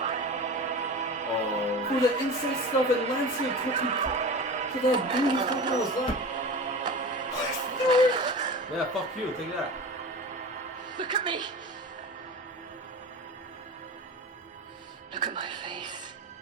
Oh. For the incest stuff and Lancel cooking. For that dude who's talking about his life. Yeah, fuck you. Take that. Look at me. Look at my face.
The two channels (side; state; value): both; normal; correlation 0.32